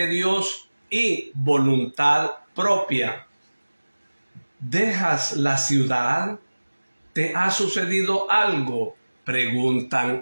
Dios y voluntad propia. ¿Dejas la ciudad? ¿Te ha sucedido algo?, preguntan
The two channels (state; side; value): inverted; both; correlation -1.00